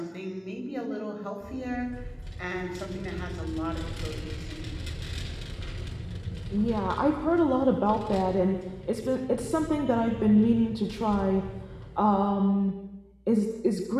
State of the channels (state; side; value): identical; both; correlation 1.00